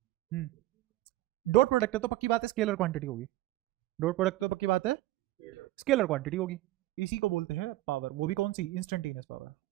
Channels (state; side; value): quieter; left; 16.5 dB